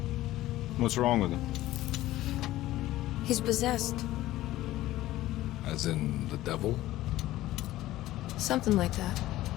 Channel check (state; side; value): quieter; right; 15.8 dB